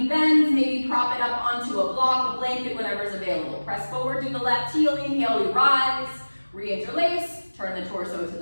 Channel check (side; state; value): both; inverted; correlation -1.00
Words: bends, maybe prop it up onto a block, a blanket, whatever's available. Press forward through the left heel, inhale, we rise, re-interlace, turn the torso to